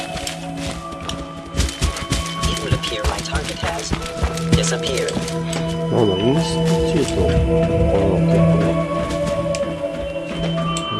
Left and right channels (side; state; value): both; identical; correlation 1.00